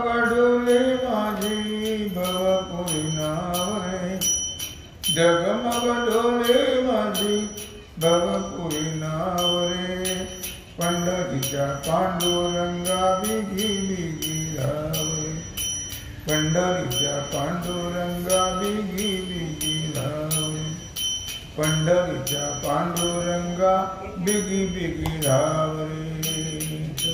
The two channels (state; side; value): identical; both; correlation 1.00